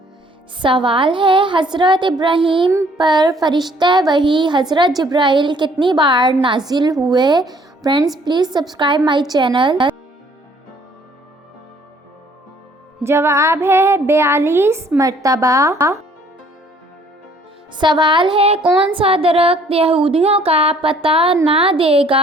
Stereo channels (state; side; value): normal; both; correlation 0.60